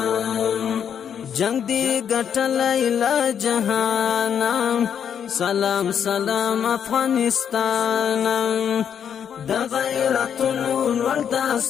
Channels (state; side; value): quieter; right; 8.3 dB